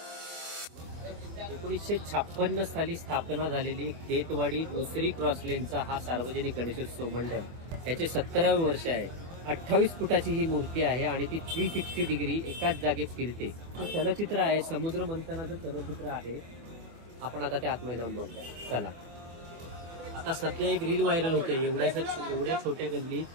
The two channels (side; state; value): left; late; 24 ms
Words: एकोणीसशे 56 साली स्थापना झालेली खेतवाडी दुसरी क्रॉसलेनचा हा सार्वजनिक गणेशोत्सव मंडळ याचे 17वे वर्ष आहे. 28 फुटाची ही मूर्ती आहे आणि ती 360 डिग्री एकाच जागेत फिरते. चलचित्र आहे, समुद्र मंथनाचं चलचित्र आहे. आपण आता त्या आतमध्ये जाऊन बघूया. चला. आता सध्या एक रील व्हायरल होते, एवढ्या छोट्या